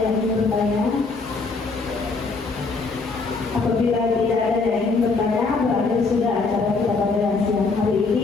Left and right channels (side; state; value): right; quieter; 4.1 dB